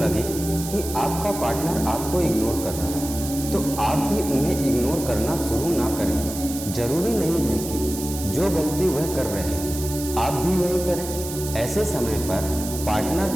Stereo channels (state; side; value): noise; right; hiss, 9 dB below the sound